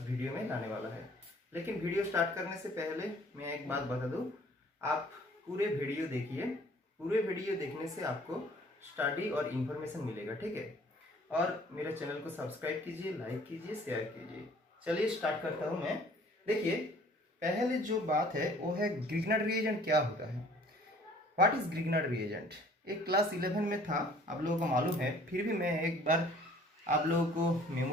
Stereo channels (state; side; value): normal; both; correlation 0.54